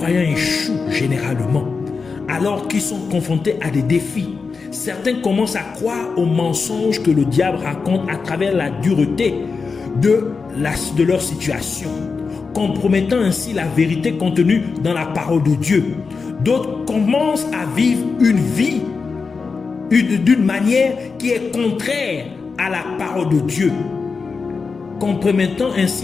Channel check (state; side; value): quieter; right; 4.8 dB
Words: échouent généralement, alors qu'ils sont confrontés à des défis. Certains commencent à croire aux mensonges que le diable raconte à travers la dureté de leur situation, compromettant ainsi la vérité contenue dans la parole de Dieu. D'autres commencent à vivre une vie d'une manière qui est contraire à la parole de Dieu, compromettant